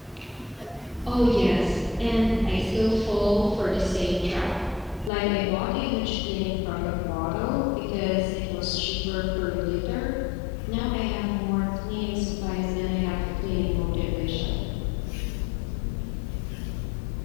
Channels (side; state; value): right; drops out; at 5.1 s